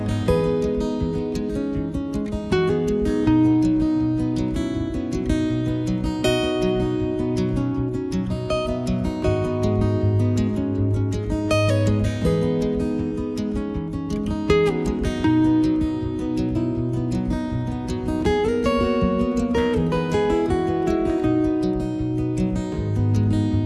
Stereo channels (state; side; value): identical; both; correlation 1.00